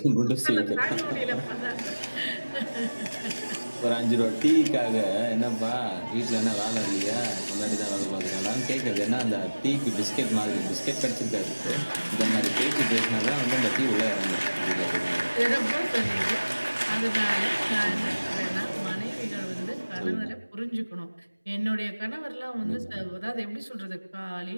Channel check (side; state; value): both; inverted; correlation -1.00